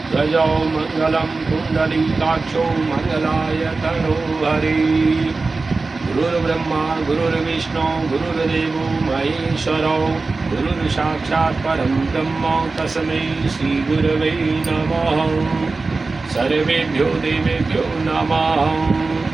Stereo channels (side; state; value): left; quieter; 3.8 dB